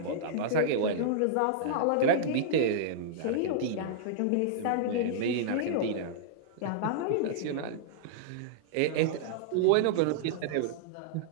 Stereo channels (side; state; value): both; different; correlation -0.02